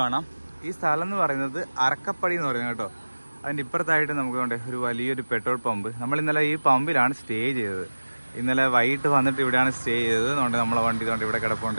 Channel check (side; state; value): both; inverted; correlation -1.00